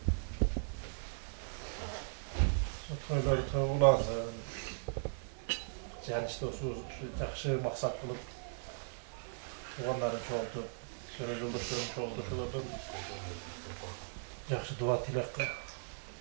Toyları toyulansın. Canışta şu jakşı maksat kılıp tuğanların çoğuldu, şöyle yoldaşların çoğuldu, şulardan jakşı dua tilek,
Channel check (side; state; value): left; silent; digital silence